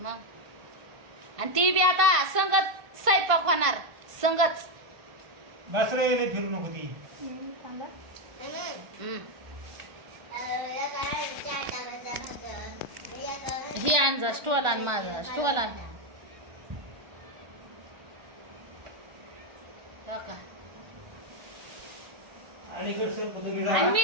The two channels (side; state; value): left; late; 1.5 ms